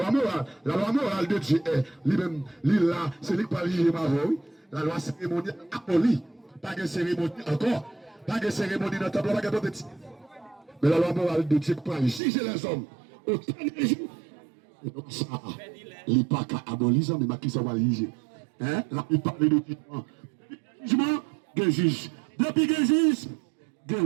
morale de Dieu est lui-même, là, c'est lui qui parle de oui. La loi cérémoniale abolie. Pas de cérémonie encore. Pas de cérémonie dans le temple, pas de petit. Mais la loi morale de Dieu qui parle juger les hommes au dernier jour. Et donc ça, il n'est pas qu'à abolir, mais qui ça va juger. Là, il parle de jugement. Jugement, de juge. Depuis que juge,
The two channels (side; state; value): left; drops out; at 12.2 s